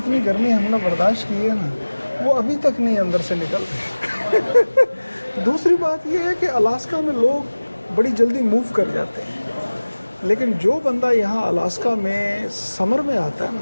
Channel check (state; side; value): inverted; both; correlation -1.00